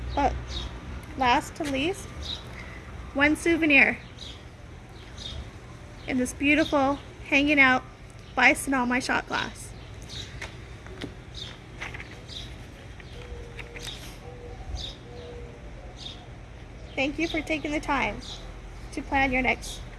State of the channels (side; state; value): both; identical; correlation 1.00